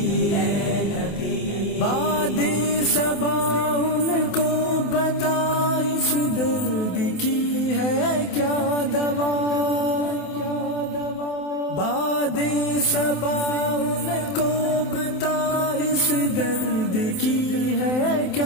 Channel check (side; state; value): right; late; 27 ms